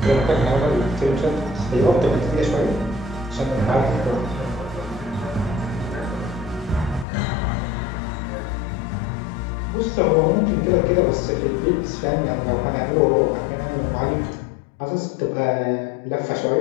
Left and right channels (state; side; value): drops out; right; at 7.1 s